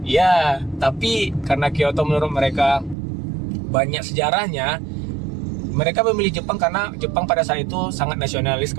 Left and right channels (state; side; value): drops out; left; at 3.0 s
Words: Ya, tapi karena Kyoto menurut mereka banyak sejarahnya, mereka memilih Jepang karena Jepang pada saat itu sangat nasionalis